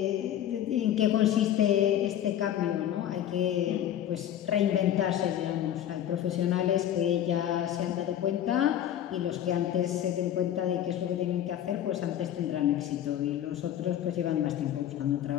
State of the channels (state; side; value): quieter; right; 11.0 dB